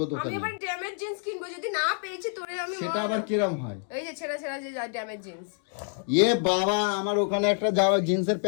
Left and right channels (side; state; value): right; silent; 59 dB below the other